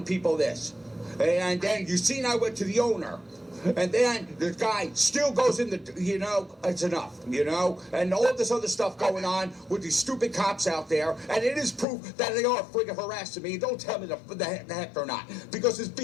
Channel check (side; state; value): right; drops out; at 11.9 s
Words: people this. And then you seen I went to the owner. And then the guy still goes in it's enough, and all this other stuff going on with these stupid cops out there, and it is proof that they are friggin' harassing me. Don't tell me the heck they're not, because it's